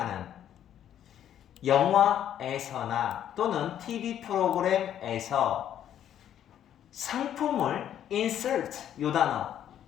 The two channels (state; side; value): quieter; right; 10.4 dB